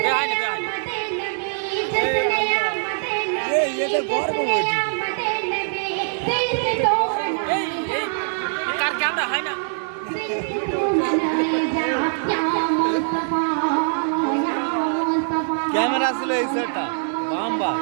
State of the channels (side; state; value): left; silent; digital silence